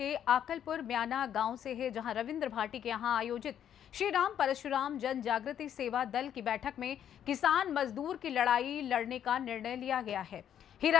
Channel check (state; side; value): quieter; right; 9.7 dB